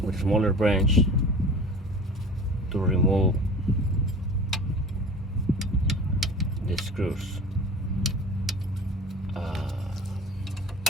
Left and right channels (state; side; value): normal; both; correlation 0.39